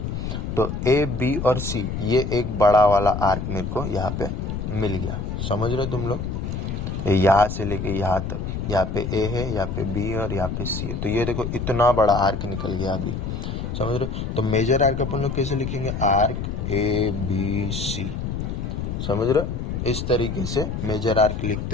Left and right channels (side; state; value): left; noise; rumble, 4 dB below the sound